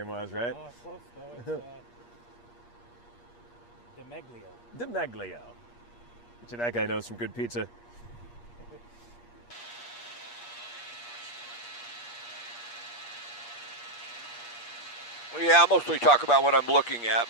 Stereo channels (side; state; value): right; late; 8.4 ms